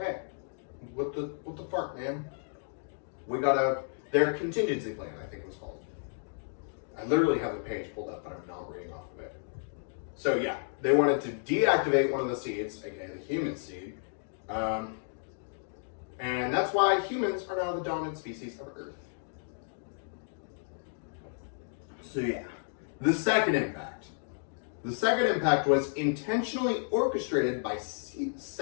what the fuck, man? We gotta, their contingency plan, I think it was called. I literally have the page pulled up, but I'm not reading off of it. So yeah, they wanted to deactivate one of the seeds, aka the human seed. And that's why humans are now the dominant species of Earth. So yeah, the second impact. The second impact was intentionally orchestrated by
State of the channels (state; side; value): silent; right; digital silence